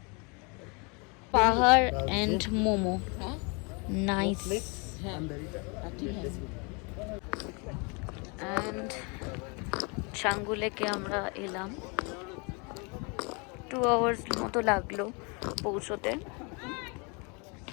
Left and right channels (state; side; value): quieter; right; 32.0 dB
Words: পাহাড় এন্ড মোমো, নাইস। অ্যান্ড ছাঙ্গুলেকে আমরা এলাম। 2 আওয়ার্স মতো লাগলো পৌঁছতে।